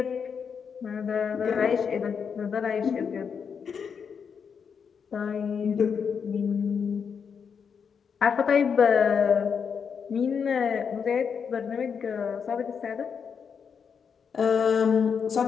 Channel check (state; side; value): quieter; right; 6.6 dB